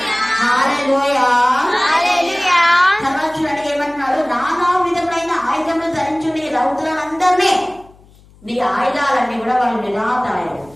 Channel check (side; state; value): left; noise; hum, 27 dB below the sound